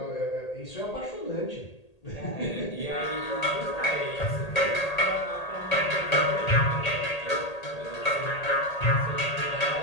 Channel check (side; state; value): right; late; 1.8 ms